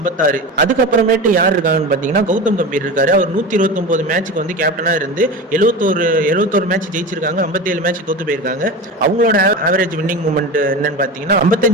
அதுக்கப்புறமேட்டு யார் இருக்காங்கன்னு பாத்தீங்கன்னா கௌதம் கம்பீர் இருக்காரு. அவர் 129 மேட்சுக்கு கேப்டனா இருந்து 71 மேட்ச் ஜெயிச்சிருக்காங்க, 57 மேட்ச் தோத்து போயிருக்காங்க. அவங்களோட ஆவரேஜ் வின்னிங் மூமெண்ட் என்னன்னு பாத்தீங்கன்னா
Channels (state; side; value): normal; both; correlation 0.28